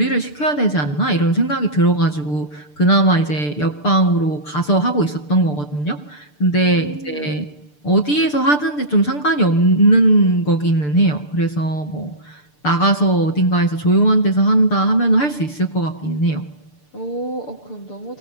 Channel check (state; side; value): late; right; 6.8 ms